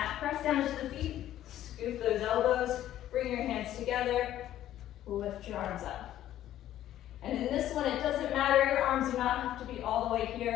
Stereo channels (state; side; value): quieter; right; 12.6 dB